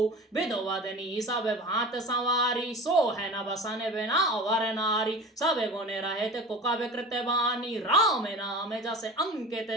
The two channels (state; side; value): normal; both; correlation 0.35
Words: विधवदनी सब भांत सवारी सो है न बसन बिना वर नारी सब गुण रहित कुकव कृत बानी राम नाम जस अंकित